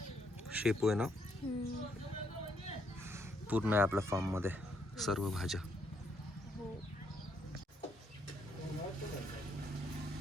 शेपू आहे ना, पूर्ण आहे आपल्या फार्म मध्ये सर्व भाज्या.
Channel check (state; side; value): normal; both; correlation 0.73